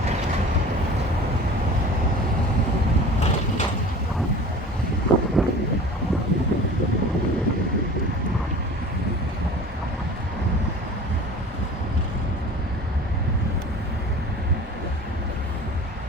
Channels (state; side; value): normal; both; correlation 0.41